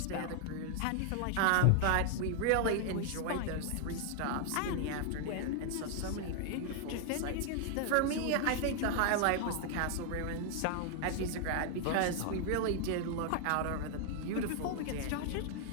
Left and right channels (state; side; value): different; both; correlation 0.00